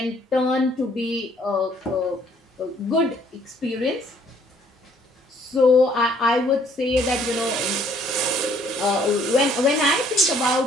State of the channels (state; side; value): normal; both; correlation 0.62